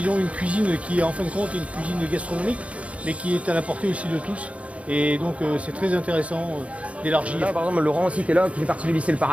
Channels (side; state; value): left; late; 0.064 ms